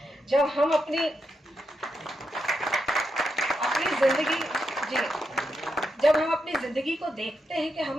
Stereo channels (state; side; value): normal; both; correlation 0.84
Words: जब हम अपनी जिंदगी जब हम अपनी ज़िंदगी को देखते हैं कि हम